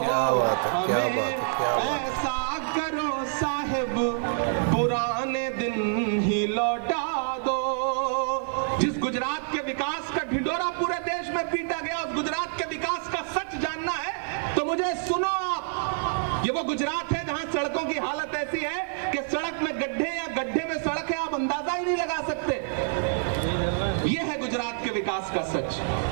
बात है, क्या बात है, क्या बात है। ऐसा करो साहिब पुराने दिन ही लौटा दो। जिस गुजरात के विकास का ढिंढोरा पूरे देश में पीटा गया, उस गुजरात के विकास का सच जानना है तो मुझे सुनो आप। ये वो गुजरात है जहां सड़कों की हालत ऐसी है कि सड़क में गड्ढे या गड्ढे में सड़क है, आप अंदाजा ही नहीं लगा सकते। ये है गुजरात के विकास का सच।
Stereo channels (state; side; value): silent; left; 57 dB below the other